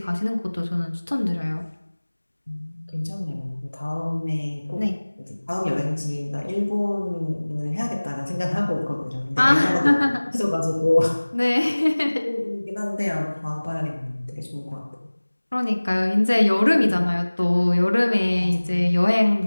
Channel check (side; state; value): both; inverted; correlation -1.00